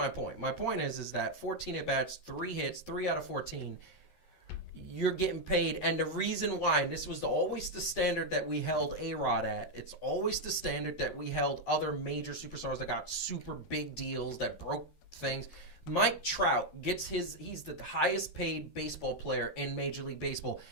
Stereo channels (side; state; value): right; late; 13 ms